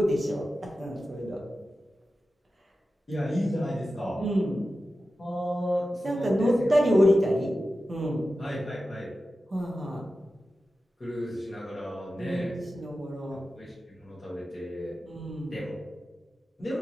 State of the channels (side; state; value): both; normal; correlation 0.93